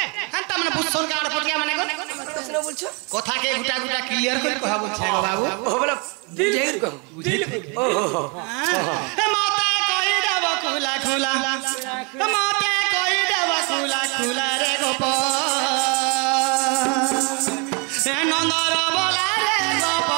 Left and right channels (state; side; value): quieter; left; 33.3 dB